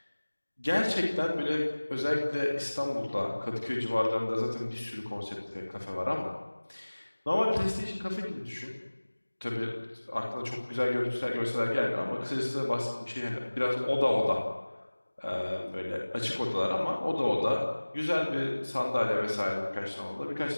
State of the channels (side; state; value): both; inverted; correlation -1.00